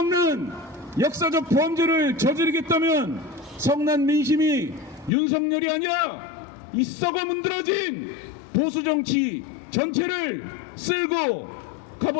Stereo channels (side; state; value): right; drops out; at 5.1 s